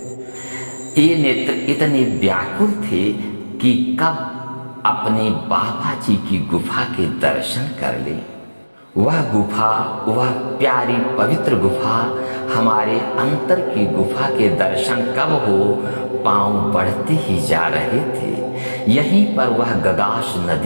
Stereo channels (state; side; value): inverted; both; correlation -1.00